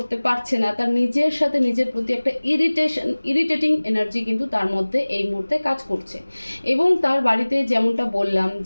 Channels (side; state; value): both; inverted; correlation -1.00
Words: পারছে না। তার নিজের সাথে নিজের প্রতি একটা ইরিটেটিং এনার্জি কিন্তু তার মধ্যে এই মুহূর্তে কাজ করছে। এবং তার বাড়িতে যেমনটা বললাম